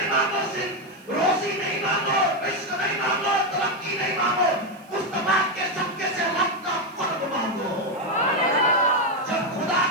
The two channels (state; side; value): noise; right; hiss, 28 dB below the sound